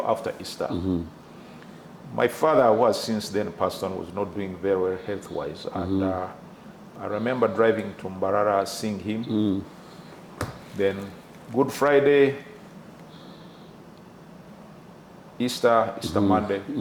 after Easter. My father, who was since then passed on, was not doing very well health-wise, and I remember driving to Mbarara, seeing him. Then Good Friday, Easter Monday,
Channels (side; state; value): both; identical; correlation 1.00